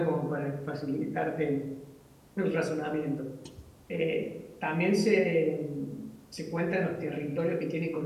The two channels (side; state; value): both; identical; correlation 1.00